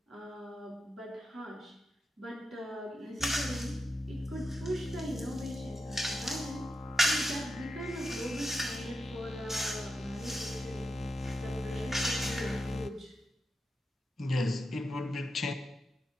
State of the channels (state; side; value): normal; both; correlation 0.88